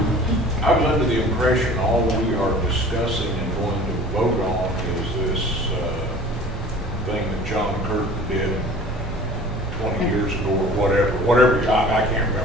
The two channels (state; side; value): normal; both; correlation 0.45